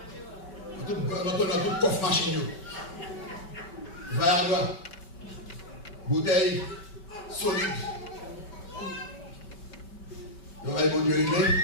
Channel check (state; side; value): late; right; 5.2 ms